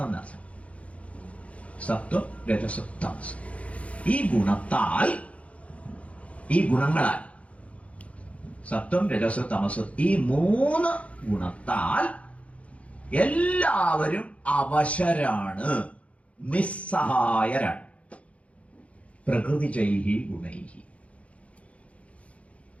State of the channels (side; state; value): right; late; 0.064 ms